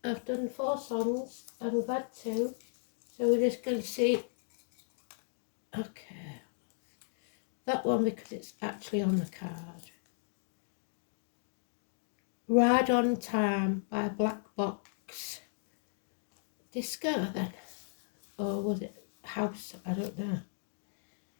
I've done 4 songs, and we've had 2. So we're just going to see. Okay. That one because it's actually on the card. Ride on Time by Black Box. Disco then. Or was it House? I don't know.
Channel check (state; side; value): silent; right; digital silence